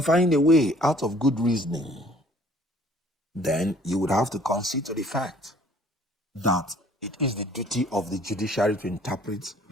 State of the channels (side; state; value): both; normal; correlation 0.56